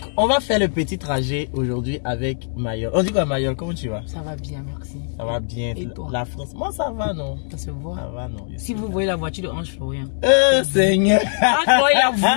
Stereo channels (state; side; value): silent; right; digital silence